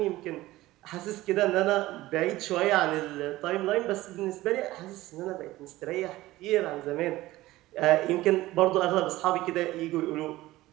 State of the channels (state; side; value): quieter; left; 17.3 dB